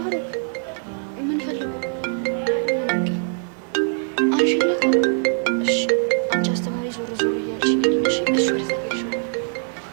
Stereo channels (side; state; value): left; silent; 57 dB below the other